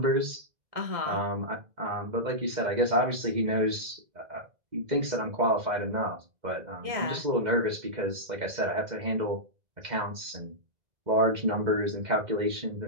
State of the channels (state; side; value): late; left; 2.1 ms